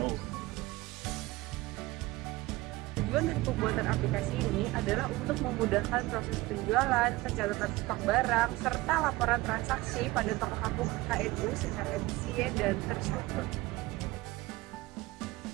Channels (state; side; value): quieter; left; 20.2 dB